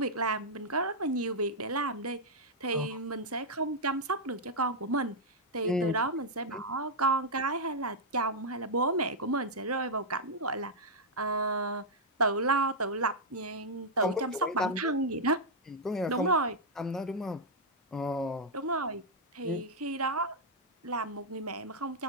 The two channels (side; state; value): both; normal; correlation -0.05